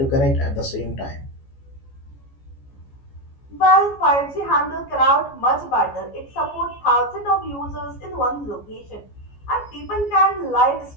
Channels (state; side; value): late; right; 14 ms